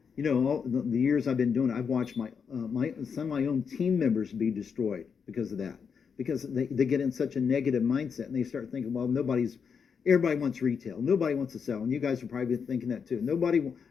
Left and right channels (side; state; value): right; quieter; 6.4 dB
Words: you know, all the years I've been doing it, I've watched some of my own team members be destroyed because of that. Because they get in such a negative mindset and they start thinking, well, everybody wants retail. Nobody wants to sell. And you guys are probably thinking that too. Nobody